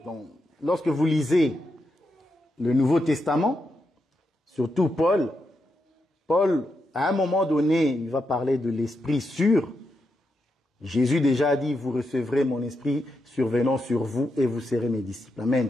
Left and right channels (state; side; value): normal; both; correlation 0.84